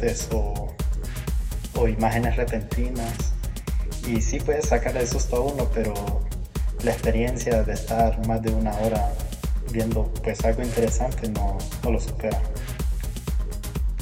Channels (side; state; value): both; identical; correlation 1.00